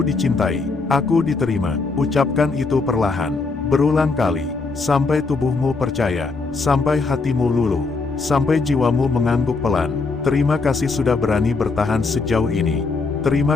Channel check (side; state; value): right; quieter; 4.1 dB